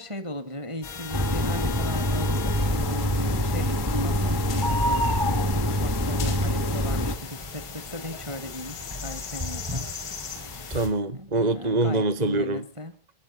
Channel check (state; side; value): late; left; 1.1 ms